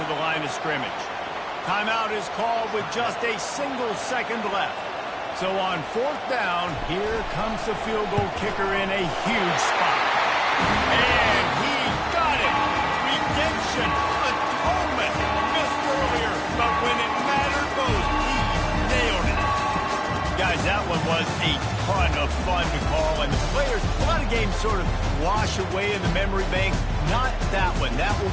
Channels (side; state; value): both; identical; correlation 1.00